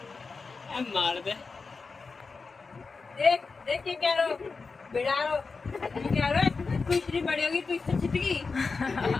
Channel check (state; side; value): quieter; right; 4.5 dB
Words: मार दे। देख देख ये क्या रो बिड़ा रो ये क्या रो। तू इतनी बड़ी होगी तू इससे छिटकी।